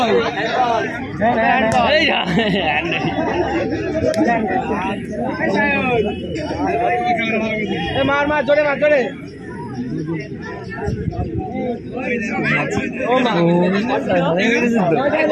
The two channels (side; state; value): both; identical; correlation 1.00